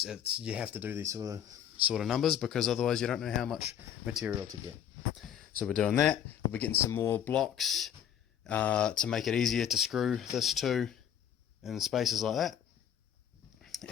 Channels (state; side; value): quieter; right; 9.6 dB